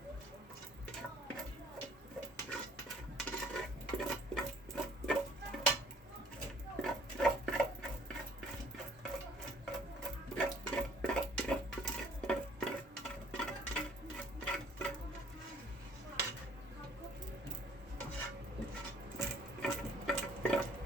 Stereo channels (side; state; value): both; normal; correlation 0.57